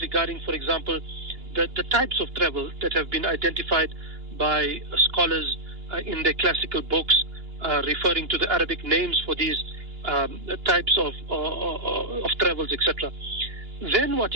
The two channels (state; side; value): late; left; 2.9 ms